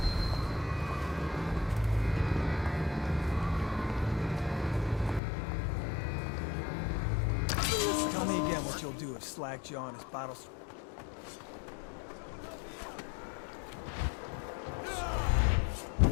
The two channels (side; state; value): right; drops out; at 5.2 s